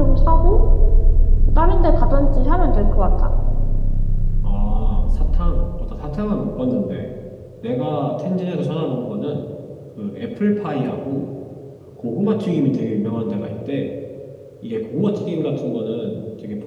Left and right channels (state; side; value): identical; both; correlation 1.00